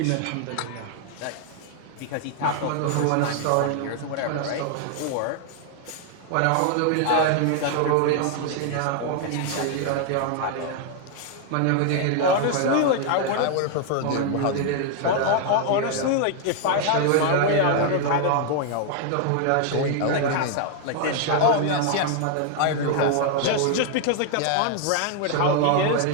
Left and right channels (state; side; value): different; both; correlation 0.00